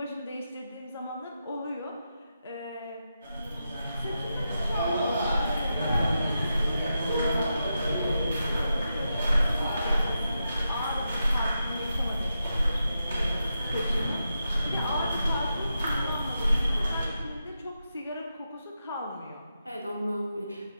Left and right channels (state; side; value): inverted; both; correlation -0.87